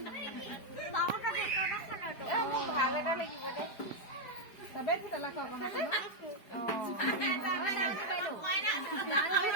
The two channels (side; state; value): right; late; 4.8 ms